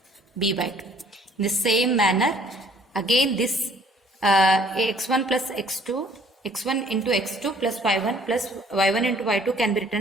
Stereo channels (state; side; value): normal; both; correlation 0.58